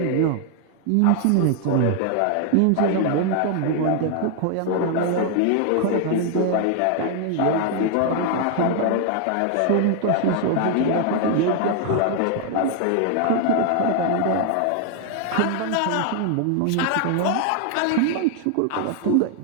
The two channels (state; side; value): different; both; correlation 0.00